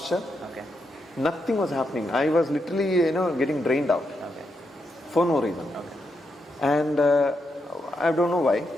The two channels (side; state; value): both; normal; correlation 0.83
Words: Okay. Nothing was happening. I was literally, getting drained out. Okay. For no reason. Okay. And I don't know why.